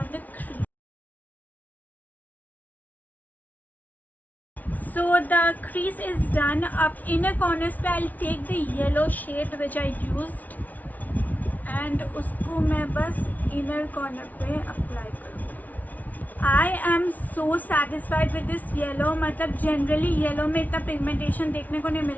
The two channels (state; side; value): late; right; 0.076 ms